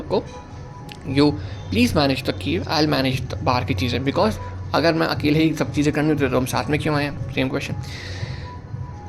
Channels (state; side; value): identical; both; correlation 1.00